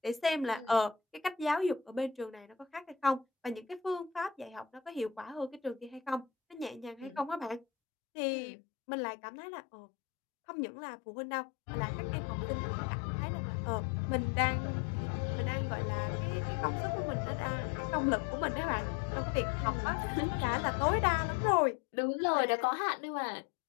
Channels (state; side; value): drops out; right; at 7.7 s